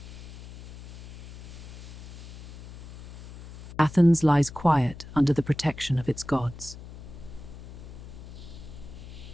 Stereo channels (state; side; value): noise; left; hum, 14 dB below the sound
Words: Athens lies quiet under the protection of its gods.